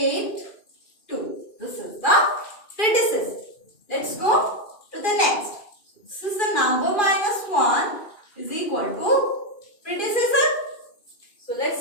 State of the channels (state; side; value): late; right; 2.3 ms